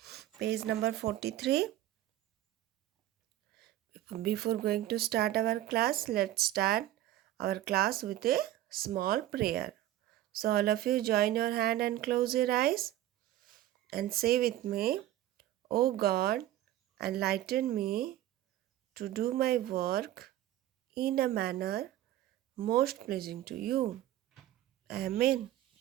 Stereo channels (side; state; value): left; quieter; 13.9 dB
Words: page number 43. Before going to start our class, let's start our class with a small prayer. So, all of you join your hand and close your eyes and say with me, O God, enlighten me to do my work in a manner most pleasing to you. Amen.